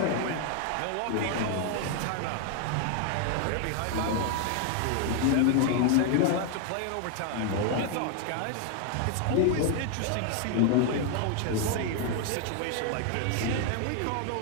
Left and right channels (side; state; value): both; different; correlation 0.00